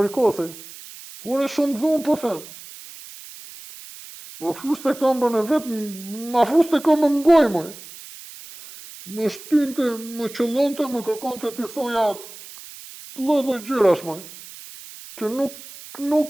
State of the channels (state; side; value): noise; right; hiss, 16 dB below the sound